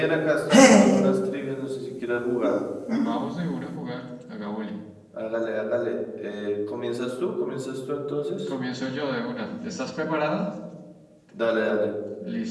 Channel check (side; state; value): both; identical; correlation 1.00